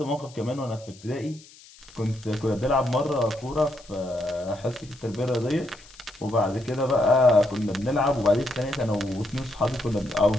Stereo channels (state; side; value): noise; left; hiss, 23 dB below the sound